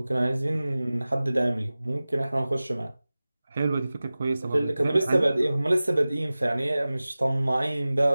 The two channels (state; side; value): inverted; both; correlation -0.97